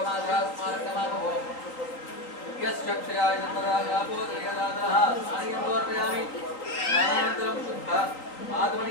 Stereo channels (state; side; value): late; right; 3.8 ms